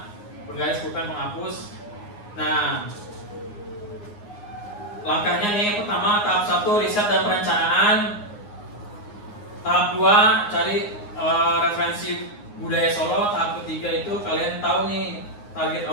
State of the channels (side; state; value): right; late; 9.6 ms